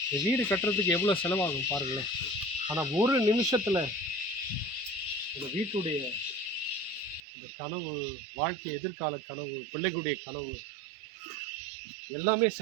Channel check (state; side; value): drops out; left; at 7.2 s